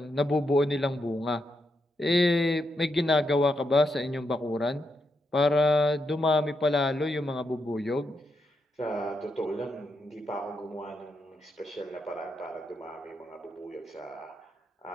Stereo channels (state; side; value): normal; both; correlation 0.82